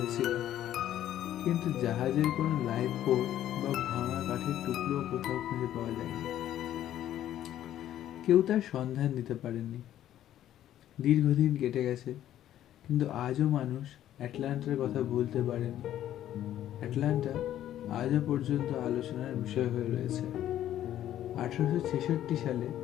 কিন্তু জাহাজের কোনো লাইফ বোট বা ভাঙা কাঠের টুকরো কোথাও খুঁজে পাওয়া যায়নি। কেউ তার সন্ধান দিতে পারেনি। দীর্ঘদিন কেটে গেছে, কিন্তু আজও মানুষ অ্যাটলান্টার কথা বলতে পারেনি। অ্যাটলান্টা আজও পর্যন্ত আলোচনার বিষয় হয়ে রয়েছে। 1866 সালে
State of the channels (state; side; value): quieter; right; 12.0 dB